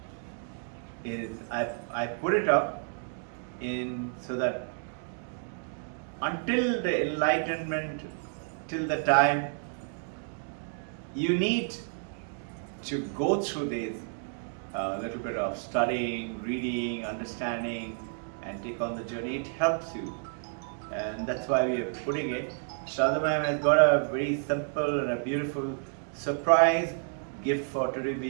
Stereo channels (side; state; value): left; silent; 57 dB below the other